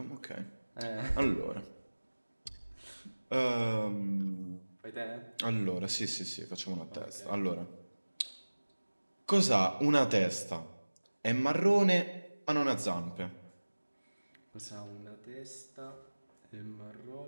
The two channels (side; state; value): both; inverted; correlation -1.00